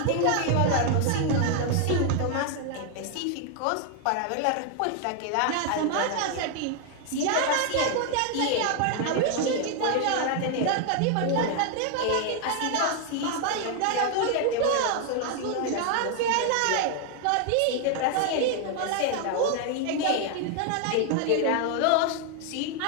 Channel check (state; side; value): different; both; correlation 0.00